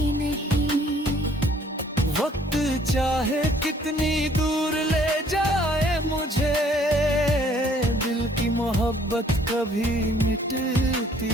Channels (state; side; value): normal; both; correlation 0.60